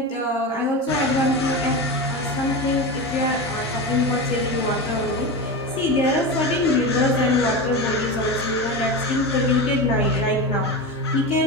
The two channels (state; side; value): normal; both; correlation 0.22